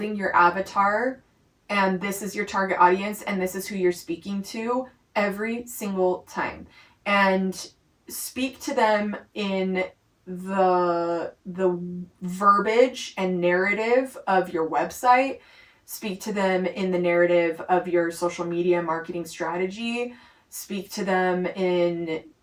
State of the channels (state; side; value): identical; both; correlation 1.00